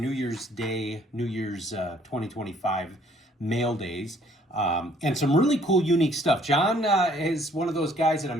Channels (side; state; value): both; normal; correlation 0.61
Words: Year's Day, New Year's 2025 mail days, and some really cool, unique stuff. John is one of those guys that I'm